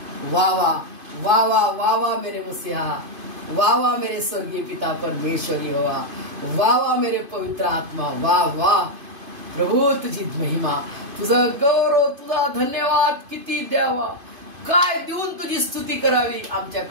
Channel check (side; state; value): left; late; 2.5 ms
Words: वा वा वा वा वा वा मेरे मसीहा, वा वा मेरे स्वर्गीय पिता परमेश्वरी हवा, वा वा मेरे पवित्र आत्मा, वा वा प्रभू तुझी महिमा, तुझा गौरव, तुझा धन्यवाद किती द्यावा, काय देऊन तुझी स्तुती करावी,